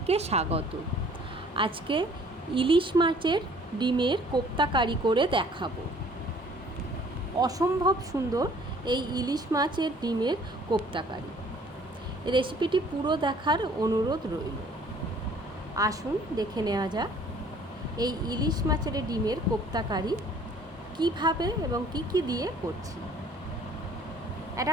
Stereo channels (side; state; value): both; normal; correlation 0.56